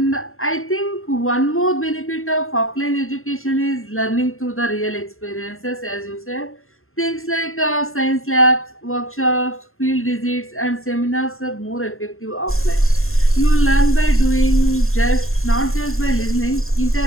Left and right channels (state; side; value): late; right; 0.61 ms